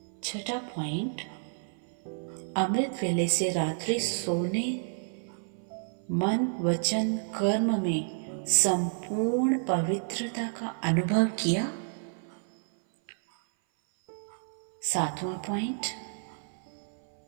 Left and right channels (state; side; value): silent; left; 58 dB below the other